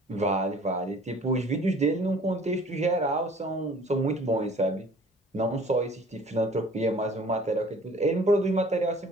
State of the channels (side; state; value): both; normal; correlation 0.51